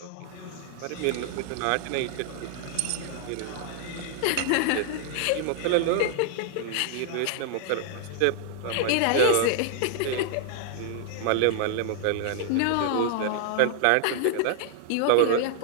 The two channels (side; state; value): both; different; correlation 0.00